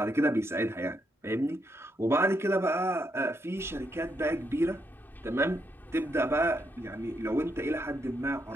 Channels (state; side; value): normal; both; correlation 0.78